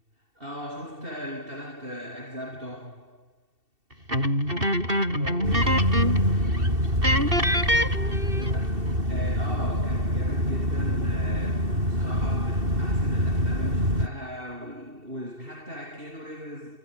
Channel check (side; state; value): left; late; 2.7 ms